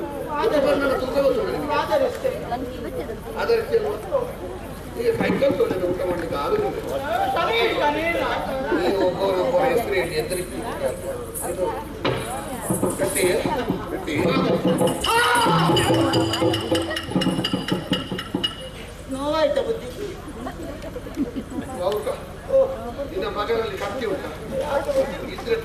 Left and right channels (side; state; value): both; identical; correlation 1.00